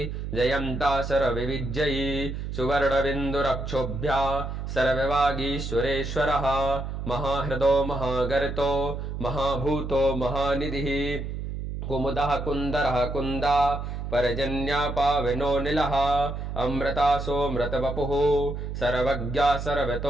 जयन्ता सर्वविजयी सुवर्णबिन्दुरक्षोभ्या सर्ववागीश्वरेश्वरः महाहृदो महागर्तो महाभूतो महानिधिः कुमुदः कुन्दरः कुन्दा परजन्या पावनो निलः अमृतासोऽमृतवपुः सर्वज्ञा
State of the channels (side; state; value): right; noise; hum, 5 dB below the sound